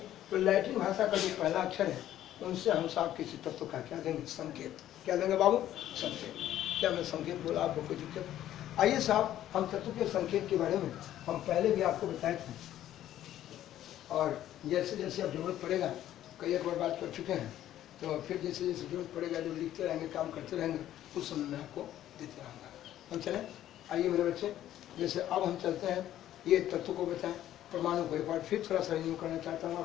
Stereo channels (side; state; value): right; quieter; 12.4 dB